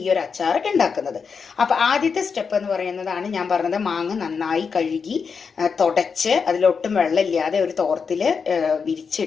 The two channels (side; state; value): right; quieter; 5.7 dB